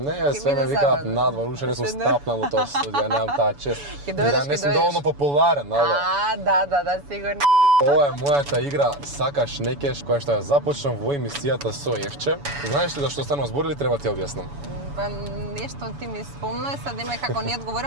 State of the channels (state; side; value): late; left; 7.0 ms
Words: све ме биде викаат забавно. надвор, уште не сум Уште не. стапнал во тоа студио, немам таа чест. Ќе дојдеш, Не ќе сум дојдеш. доволно популарен, ало. Да, сигурно. Ова е мојата игра Сакаш некеш, која што ја започнам во емисијата со Евче. Знаеш ли зашто станува збор или треба ти објаснам? Па нешто ти ми спомна, sad има како не